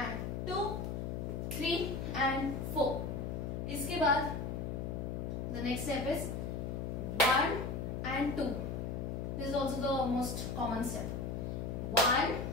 2, 3 and 4. इसके बाद the next step is 1 and 2. This is also the most common step. 1,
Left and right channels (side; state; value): left; noise; hum, 3 dB below the sound